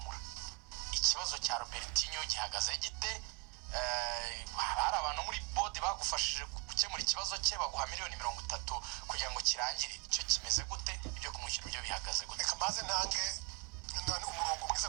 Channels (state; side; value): quieter; left; 32.6 dB